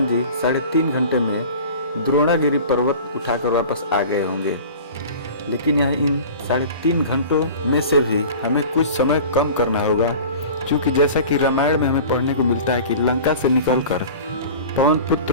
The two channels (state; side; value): inverted; both; correlation -0.39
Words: जी 3.5 घंटे में द्रोणागिरी पर्वत उठाकर वापस आ गए होंगे। लेकिन यह इन 3.5 घंटों में से भी हमें कुछ समय कम करना होगा, क्योंकि जैसा कि रामायण में हमें पढ़ने को मिलता है कि लंका से निकलकर पवन